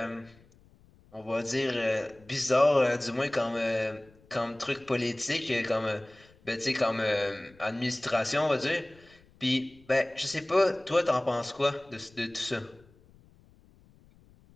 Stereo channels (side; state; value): left; noise; rumble, 28 dB below the sound